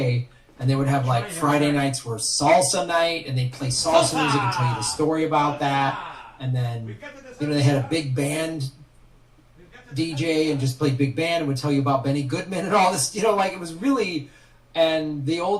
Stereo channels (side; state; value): both; identical; correlation 1.00